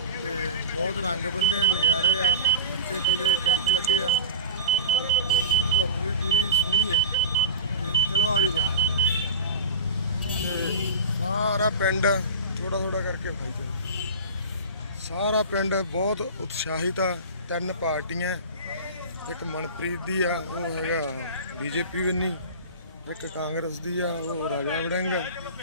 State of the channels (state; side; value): inverted; both; correlation -0.33